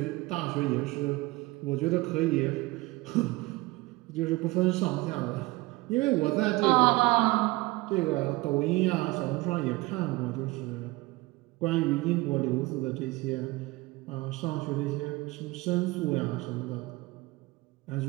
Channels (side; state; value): left; quieter; 21.4 dB